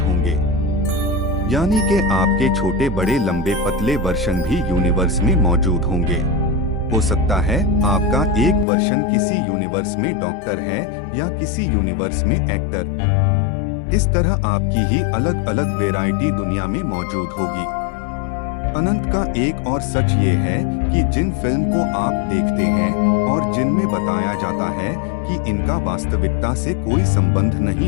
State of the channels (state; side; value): drops out; right; at 8.7 s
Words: होंगे। यानी कि आपके छोटे बड़े लंबे पतले वर्षन भी यूनिवर्स में मौजूद होंगे। हो सकता है आपका एक वर्षन किसी यूनिवर्स में डॉक्टर है या किसी यूनिवर्स में एक्टर। इस तरह आपकी ही अलग अलग वैरायटी दुनिया में मौजूद होगी। अनंत का एक और सच ये है कि जिन फिल्म को आप देखते हैं और जिनमें बताया जाता है कि इनका वास्तविकता से कोई संबंध